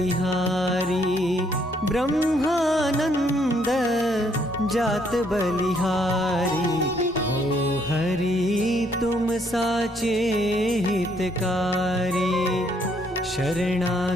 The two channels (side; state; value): both; normal; correlation 0.69